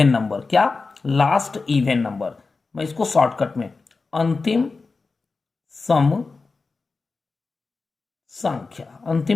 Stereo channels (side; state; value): right; quieter; 4.1 dB